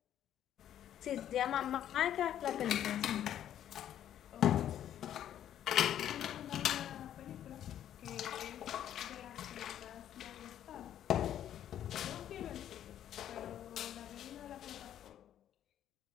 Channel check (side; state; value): right; quieter; 10.8 dB